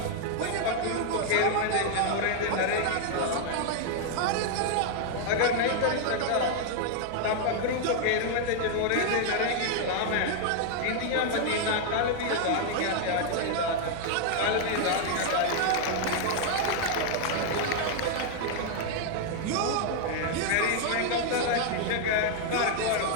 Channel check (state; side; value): different; both; correlation 0.00